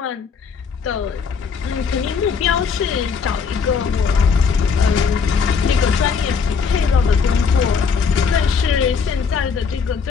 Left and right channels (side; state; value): right; quieter; 5.8 dB